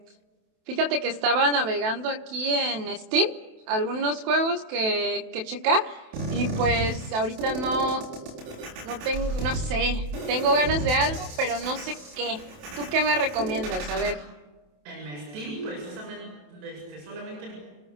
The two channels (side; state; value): left; late; 28 ms